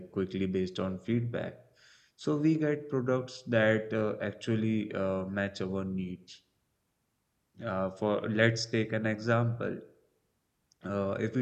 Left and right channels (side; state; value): both; identical; correlation 1.00